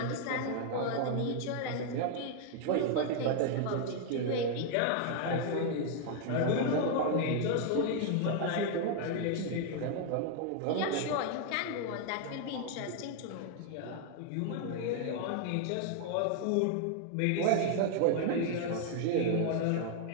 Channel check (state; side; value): different; both; correlation 0.00